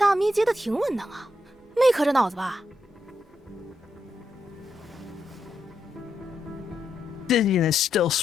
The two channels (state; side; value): normal; both; correlation 0.83